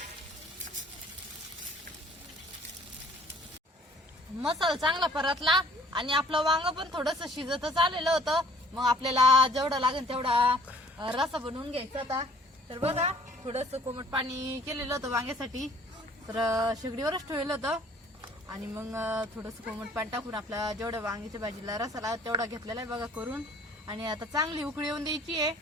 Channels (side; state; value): both; normal; correlation 0.56